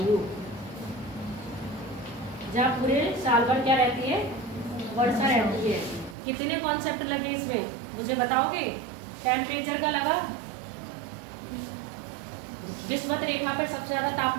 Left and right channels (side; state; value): left; drops out; at 6.2 s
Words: जहाँ पूरे साल भर क्या रहती है? वर्षा रहती है। कितने कॉन्सेप्ट लगे इसमें मुझे बताओगे? टेम्परेचर का लगा, विषुवत रेखा पर सबसे ज्यादा